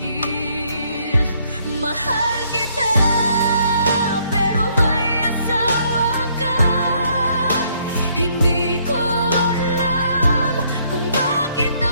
Mahal kita, pero may asawa ka. Hindi ko alam kung bakit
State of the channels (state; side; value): inverted; both; correlation -0.68